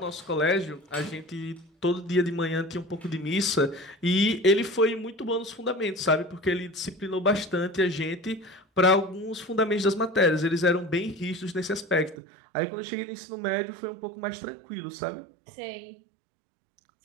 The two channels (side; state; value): left; drops out; at 12.2 s